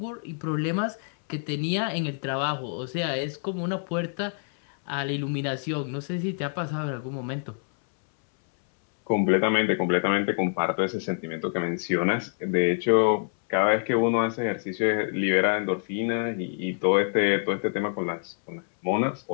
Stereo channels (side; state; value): right; silent; 61 dB below the other